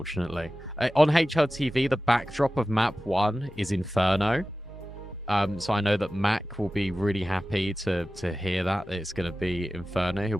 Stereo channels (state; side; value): normal; both; correlation 0.95